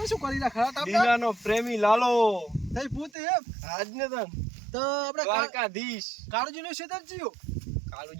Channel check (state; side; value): drops out; left; at 3.1 s